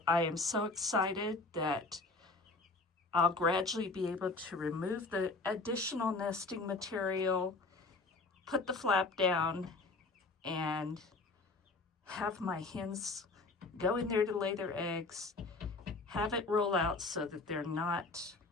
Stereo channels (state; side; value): quieter; right; 3.5 dB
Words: I am so excited that I'll gradually be able to remove the additional nesting material, put the flap down, and have my hens go in there to lay their eggs, have it roll out so that they're not